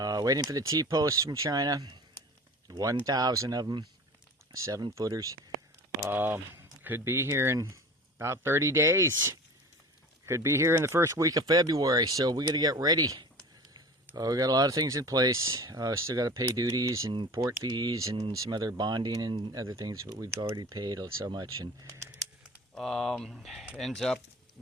for the T-posts from China. 1,000 of them, 7-footers. Could be here in about 30 days. Could be here in the first week of February, so we got to get ready. We got a lot of things in place. Still got to pay duties and port fees and some other bonding and other things, but we've already paid so much, and ends up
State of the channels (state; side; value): normal; both; correlation 0.38